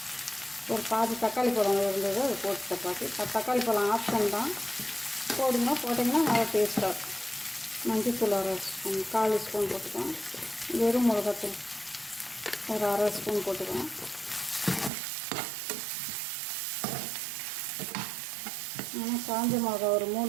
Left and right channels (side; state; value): left; drops out; at 14.9 s